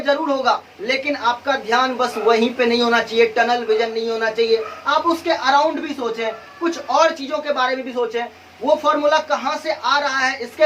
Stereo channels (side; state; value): both; identical; correlation 1.00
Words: जरूर होगा, लेकिन आपका ध्यान बस वहीं पे नहीं होना चाहिए, टनल विजन नहीं होना चाहिए। आप उसके अराउंड भी सोचें, कुछ और चीजों के बारे में भी सोचें, वो फॉर्मूला कहाँ से आ रहा है